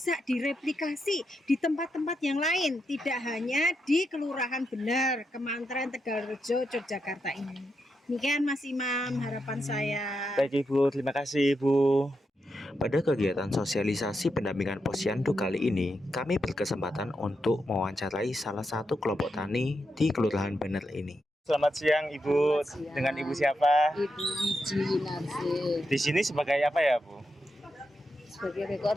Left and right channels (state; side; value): normal; both; correlation 0.84